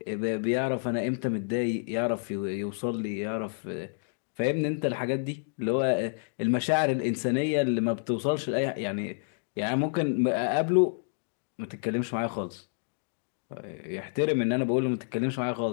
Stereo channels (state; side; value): silent; right; digital silence